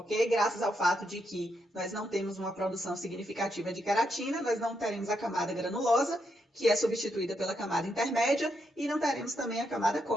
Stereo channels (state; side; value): normal; both; correlation 0.80